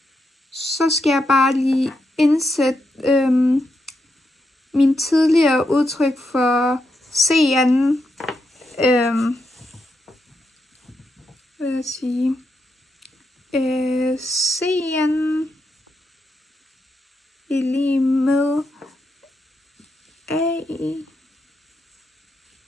Så skal jeg bare lige indsætte min tidligere udtryk for C'en. Hvad vil jeg sige? C'en er lige med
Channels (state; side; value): normal; both; correlation 0.83